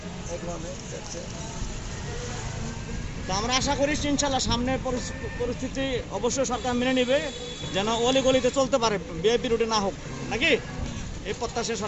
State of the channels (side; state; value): both; identical; correlation 1.00